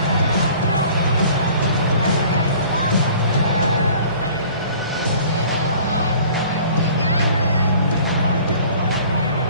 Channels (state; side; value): inverted; both; correlation -0.49